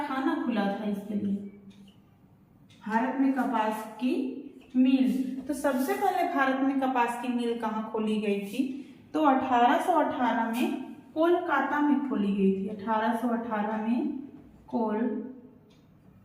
खुला था इसके लिए। भारत में कपास की मिल, तो सबसे पहले भारत में कपास की मिल कहाँ खोली गई थी, तो 1818 में कोलकाता में खोली गई थी। 1818 में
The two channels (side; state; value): both; identical; correlation 1.00